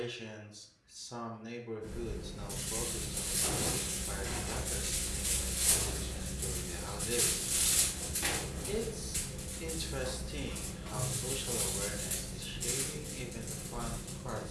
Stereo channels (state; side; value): identical; both; correlation 1.00